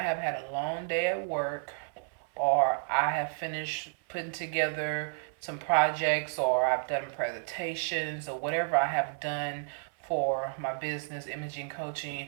had a long day at work, or I have finished putting together some projects, or I've done presentations, or whatever I have done for my business, imaging coaching,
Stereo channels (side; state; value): left; silent; 57 dB below the other